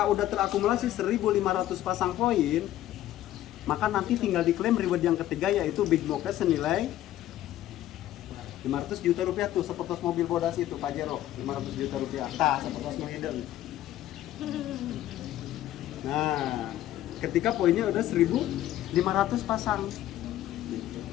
udah terakumulasi 1.500 pasang poin, maka nanti tinggal diklaim reward yang ketiga yaitu Big Mocha senilai 500 juta rupiah tuh, seperti mobil bodas itu Pajero, 500 juta rupiah. Seperti Mohideng. Nah, ketika poinnya udah 1.500 pasang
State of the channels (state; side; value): quieter; right; 13.5 dB